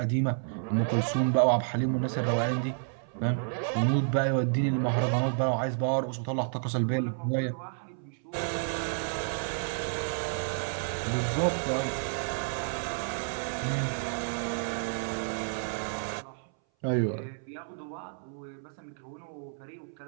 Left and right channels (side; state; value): left; silent; 57 dB below the other